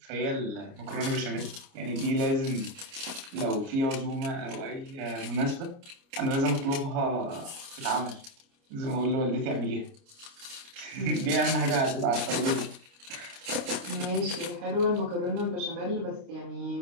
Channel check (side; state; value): left; late; 29 ms